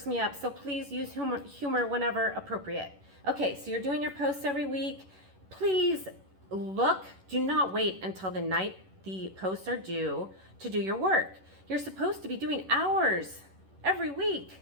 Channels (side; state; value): left; late; 11 ms